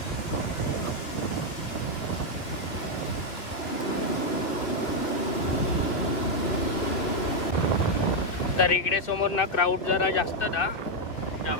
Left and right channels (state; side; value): late; right; 2.6 ms